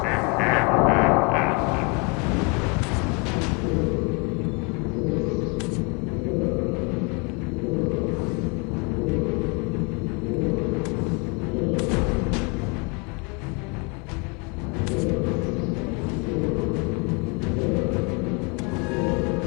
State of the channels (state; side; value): quieter; right; 31.6 dB